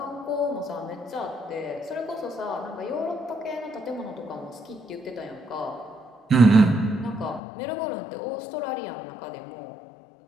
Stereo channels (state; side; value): drops out; right; at 7.4 s